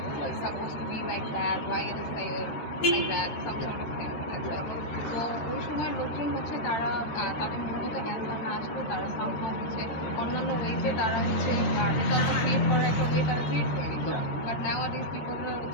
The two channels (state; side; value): late; right; 13 ms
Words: It's supposed to be like that. Why it is like that? Some sort of thing. তো ওই সময় লোকজন হচ্ছে তারা তাদের মূলত অ্যান্সার না আসলে তারা সামহাও হচ্ছে অন্যান্য ওয়েজে তারা হচ্ছে রেজাল্টটা ক্রিয়েট করার একটা ওয়ে তারা ক্রিয়েট করে নিত। বাট নাওয়াডেজ পিপলরা